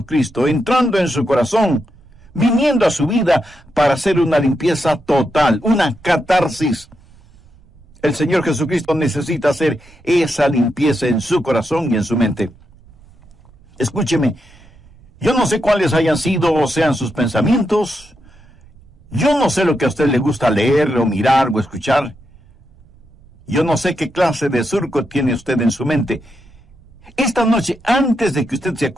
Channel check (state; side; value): noise; right; rumble, 26 dB below the sound